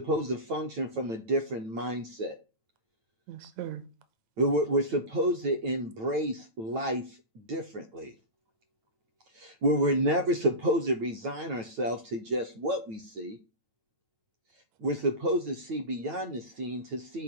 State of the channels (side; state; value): left; late; 9.0 ms